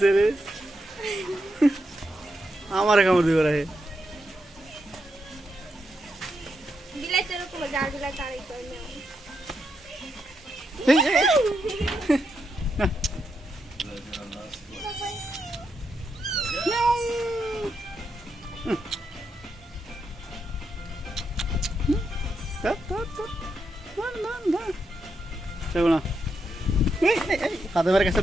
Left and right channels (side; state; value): both; normal; correlation 0.83